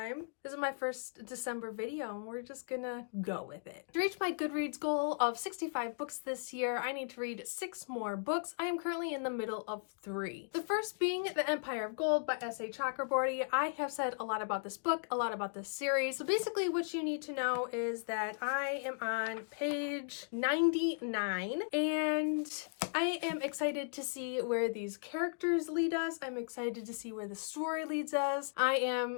This is my first December video and we're just gonna go with it. To reach my Goodreads goal of 65 books this year, I need to read 6 more books. I am currently in the middle of 3. The first being The Empire of Gold by S.A. Chakraborty. I have said a lot about this book, a lot about this series. So basically what you need to know is that I am on page 99 and I am excited to see where these characters lead us. I'm excited to see where the story leads us. I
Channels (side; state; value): right; silent; digital silence